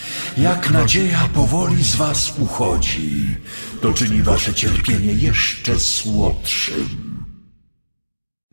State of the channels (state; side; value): inverted; both; correlation -1.00